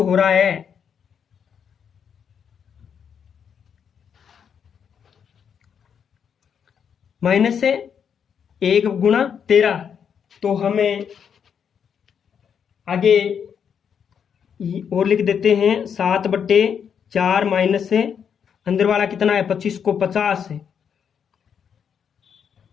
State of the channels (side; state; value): right; quieter; 7.5 dB